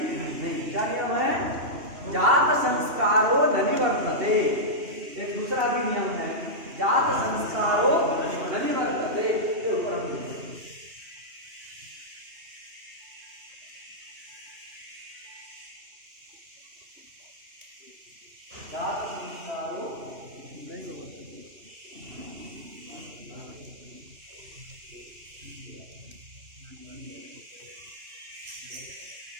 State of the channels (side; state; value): left; late; 2.7 ms